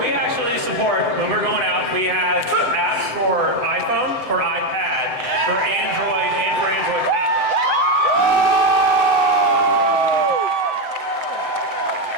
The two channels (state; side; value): late; left; 7.9 ms